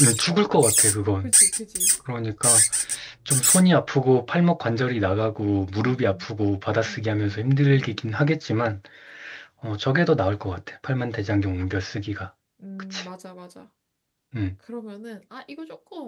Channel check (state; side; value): identical; both; correlation 1.00